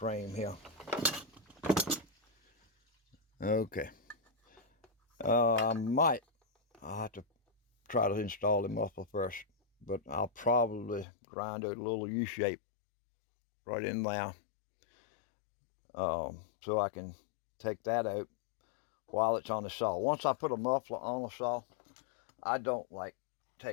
here. Okay. I'll have to try to install the muffler first, but I'll probably grind out a little U-shape right in there, so I can take that out while it's on the saw. Once I put a muffler on the saw, I don't like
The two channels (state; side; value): drops out; right; at 11.1 s